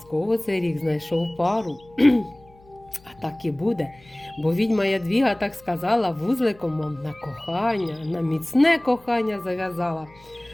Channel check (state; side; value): noise; left; hum, 27 dB below the sound